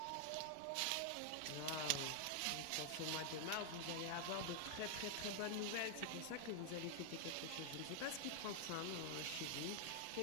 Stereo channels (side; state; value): both; different; correlation 0.00